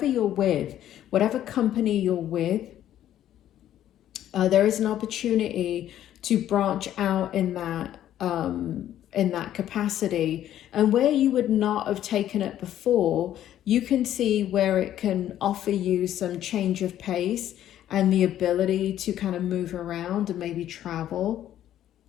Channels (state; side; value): quieter; right; 11.8 dB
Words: you're with, whatever company you're with, there is an opportunity to branch out in that capacity. And where you would not have taken it before, you can see where it can offer you some change of pace and the ability to kind of move around and maybe travel.